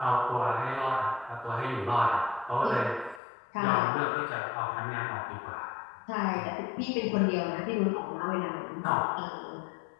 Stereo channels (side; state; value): right; drops out; at 3.2 s